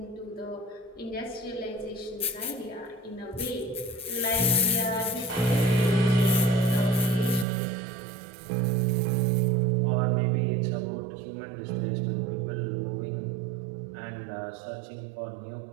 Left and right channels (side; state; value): left; drops out; at 7.5 s